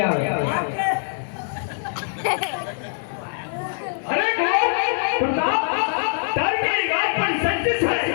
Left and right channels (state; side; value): silent; right; 63 dB below the other